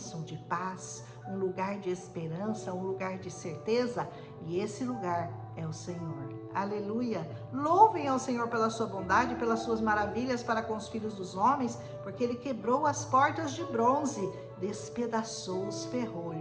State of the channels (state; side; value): identical; both; correlation 1.00